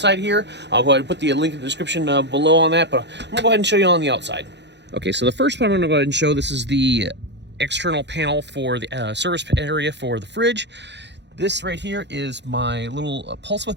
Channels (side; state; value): left; late; 0.51 ms